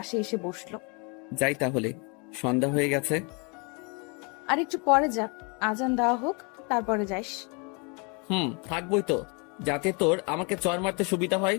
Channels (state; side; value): quieter; right; 32.5 dB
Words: এসে বসলো। যাই তাহলে, সন্ধ্যা হয়ে গেছে। আর একটু পরে যা, আজান দেওয়া হোক তারপরে যাইস। থাকবই তো, যাতে তোর আমাকে চর মারতে সুবিধা হয়।